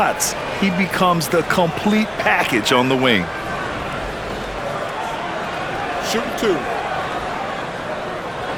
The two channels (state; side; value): identical; both; correlation 1.00